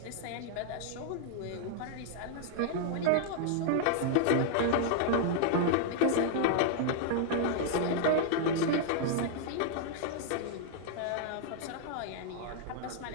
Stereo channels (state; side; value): different; both; correlation -0.01